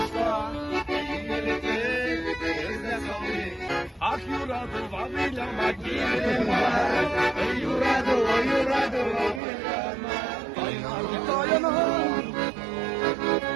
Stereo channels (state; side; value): drops out; left; at 9.4 s